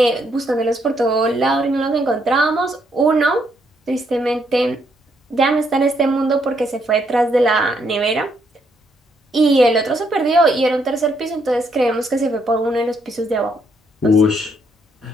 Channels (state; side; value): normal; both; correlation 0.73